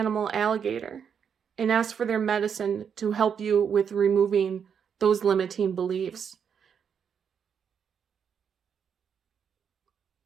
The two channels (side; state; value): left; quieter; 7.4 dB